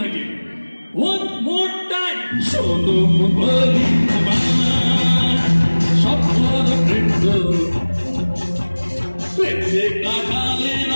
One more time. শোনো বলি স্বপ্নর বৃন্দ, প্রেমে কাটালে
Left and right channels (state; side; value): inverted; both; correlation -1.00